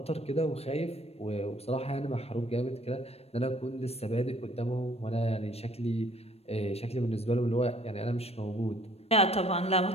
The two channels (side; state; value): right; late; 0.29 ms